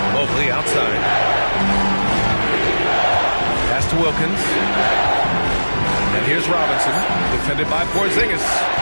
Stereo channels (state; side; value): inverted; both; correlation -1.00